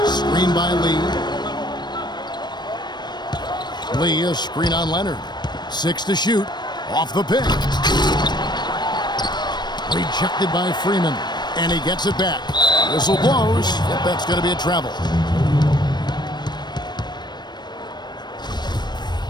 Screen by Lee. Lee, a screen on Leonard. 6 to shoot. Off the pick. Rejected by Freeman. And he gets it back. Whistle blows. Yep, that's going to be a travel.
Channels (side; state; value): right; late; 0.21 ms